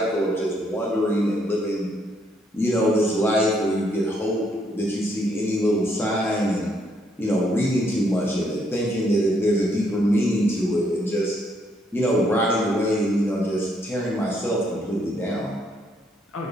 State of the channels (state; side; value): normal; both; correlation 0.72